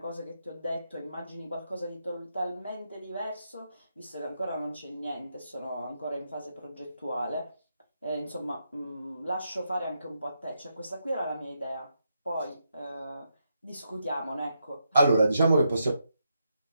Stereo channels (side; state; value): both; inverted; correlation -0.82